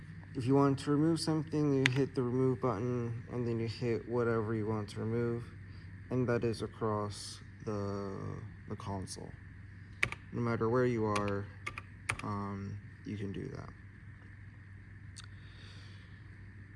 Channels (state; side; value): identical; both; correlation 1.00